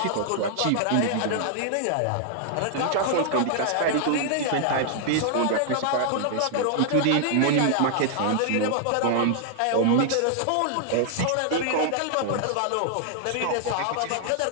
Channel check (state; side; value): different; both; correlation -0.01